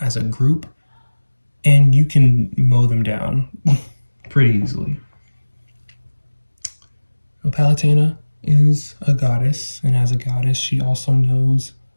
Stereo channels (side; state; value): both; inverted; correlation -1.00